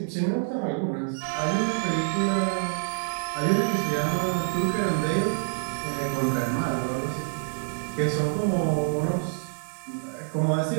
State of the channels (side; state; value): left; silent; 60 dB below the other